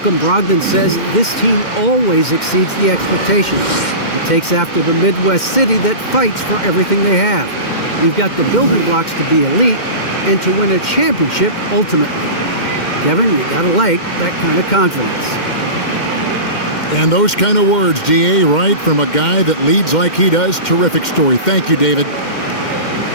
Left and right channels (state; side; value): late; right; 2.1 ms